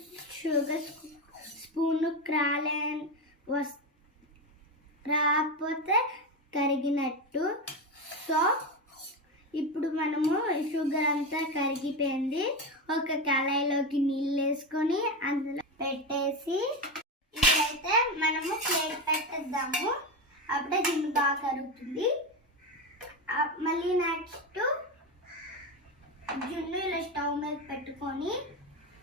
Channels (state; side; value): normal; both; correlation 0.16